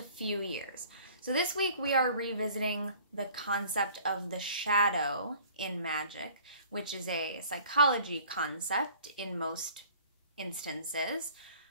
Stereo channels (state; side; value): inverted; both; correlation -0.50